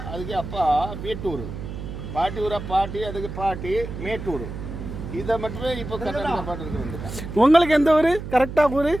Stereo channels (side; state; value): right; noise; hum, 8 dB below the sound